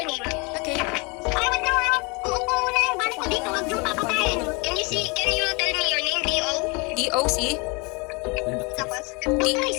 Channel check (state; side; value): quieter; right; 29.9 dB